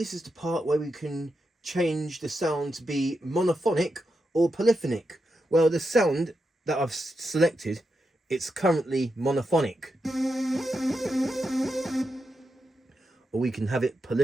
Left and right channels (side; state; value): both; normal; correlation 0.86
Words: is the part where we can change the sound to be monophonic or polyphonic. Well, the sound that I've selected, it's currently monophonic. Or we can have it